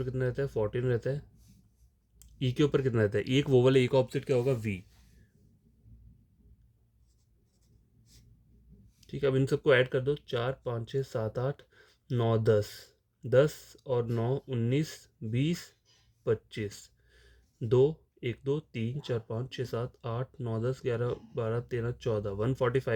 कितना रहता है 14 रहता है। ई के ऊपर कितना रहता है, ई एक वोवल है, ई का ऑपोजिट क्या होगा वी, ठीक है। अब इन सबको ऐड कर दो, 4 5 6 7 8 9 10, 10 और 9 19 20 25, 2 1 2 3 4 5 6 7 8 9 10 11 12 13 14,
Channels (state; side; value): identical; both; correlation 1.00